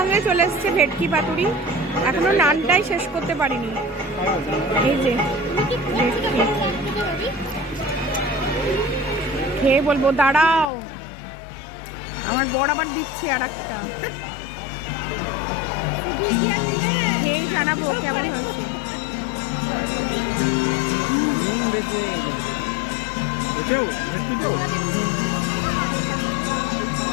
চলে এসছে ভেটকি পাতুরি। এখনো নানটাই শেষ করতে পারিনি। এই যে খেয়ে বলবো, দাঁড়াও। আমার বর আবার দিচ্ছে আর একটা, খেয়ে জানাবো কেমন হয়েছে। নুন বেশি হয়ে গেছে। বুঝেও একটু তো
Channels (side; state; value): right; drops out; at 10.7 s